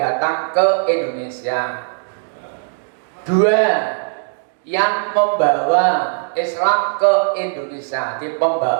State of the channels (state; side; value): silent; left; 59 dB below the other